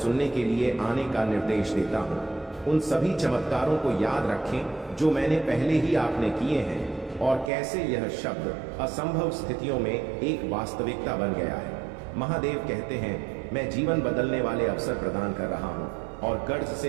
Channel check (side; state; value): left; drops out; at 7.5 s